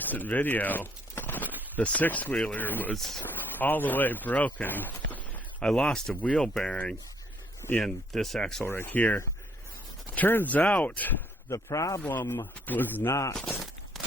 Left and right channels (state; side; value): normal; both; correlation 0.65